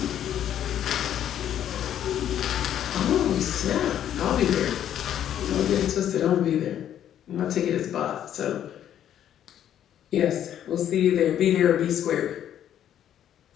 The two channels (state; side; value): quieter; right; 10.5 dB